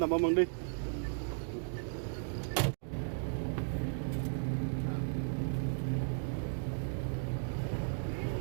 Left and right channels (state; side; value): silent; left; digital silence